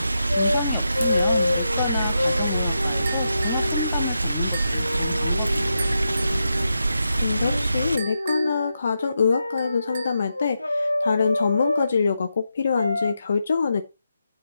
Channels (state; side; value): inverted; both; correlation -0.86